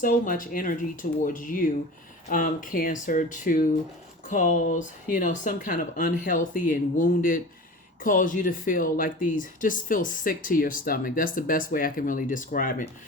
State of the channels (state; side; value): normal; both; correlation 0.35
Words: much energy towards you, Cancer, to cause, some kind of unhealthy and wounded, cause you to feel like just feel sick to your stomach. That's the best way I can really describe it.